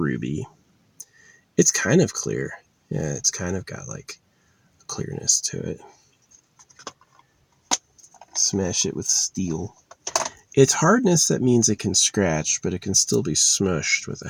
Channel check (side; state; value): both; identical; correlation 1.00